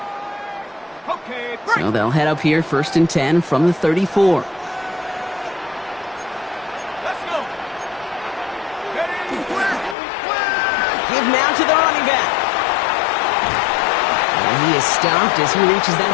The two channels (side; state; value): right; drops out; at 10.0 s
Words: So they'll head up here first and 10 from the 34. Give now to the running back. And he is stopped as he reaches